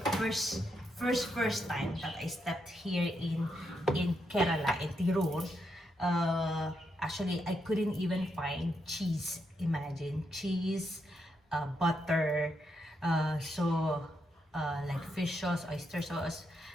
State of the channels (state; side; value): normal; both; correlation 0.81